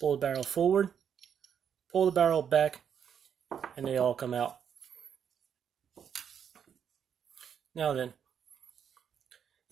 the barrel forward, pull the barrel back, and they all come out. Now then,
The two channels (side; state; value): left; quieter; 8.0 dB